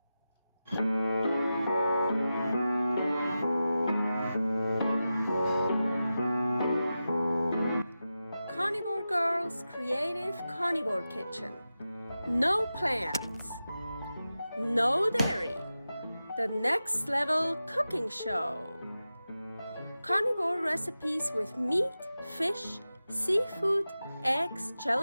Carnivore Girl's Creative Carnivore Kitchen. No plants, no dairy. The next level cooking show. Carnivore recipes with meat, fish, seafood, eggs,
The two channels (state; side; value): inverted; both; correlation -0.93